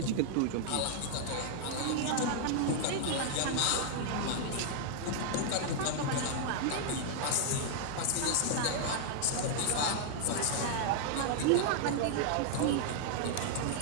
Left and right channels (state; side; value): different; both; correlation 0.00